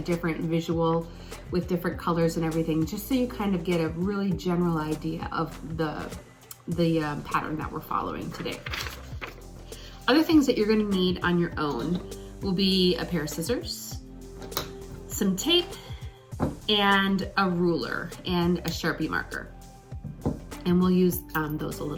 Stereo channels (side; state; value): both; identical; correlation 1.00